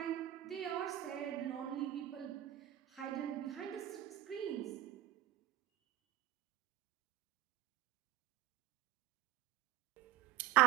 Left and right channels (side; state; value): left; quieter; 13.7 dB